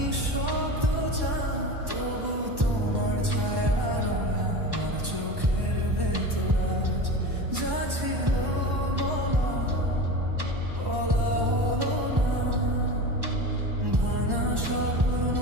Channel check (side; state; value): left; late; 1.1 ms